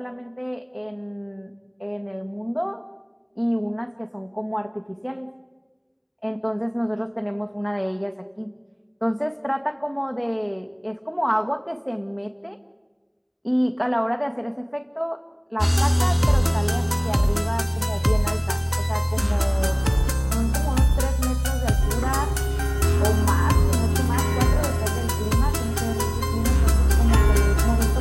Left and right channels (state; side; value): identical; both; correlation 1.00